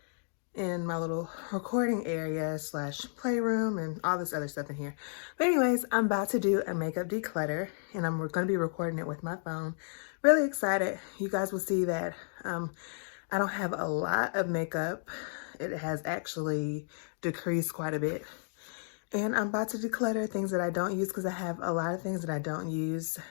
in my little recording area slash playroom and all this other stuff in here. But anyways, I'm about to do a makeup declutter and I'm going to be recording it with my phone. Really excited. You guys will see that I don't have a lot of makeup. It has actually decreased quite a bit. And I'm about to declutter things that I don't use because I have a lot of things that I don't use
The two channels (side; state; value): right; silent; digital silence